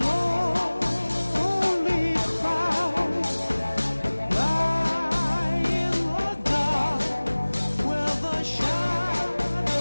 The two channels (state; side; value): inverted; both; correlation -1.00